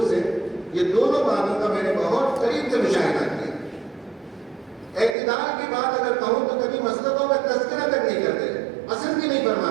سے، یہ دونوں باتوں کا میں نے بہت قریب سے مشاہدہ کیا. اعتدال کی بات اگر کہوں تو کبھی مسلکوں کا تذکرہ تک نہیں کرتے، پسند بھی نہیں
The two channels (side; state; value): left; drops out; at 5.2 s